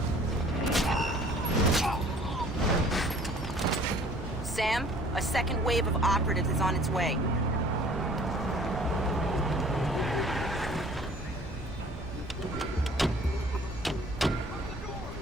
Sam, a second wave of operatives is on its way.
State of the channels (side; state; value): both; normal; correlation 0.52